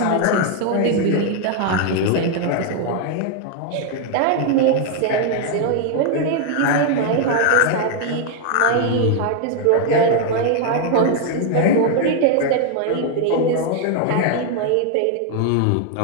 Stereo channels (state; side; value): different; both; correlation 0.00